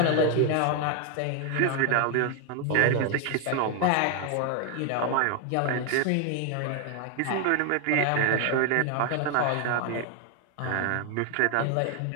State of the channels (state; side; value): different; both; correlation 0.01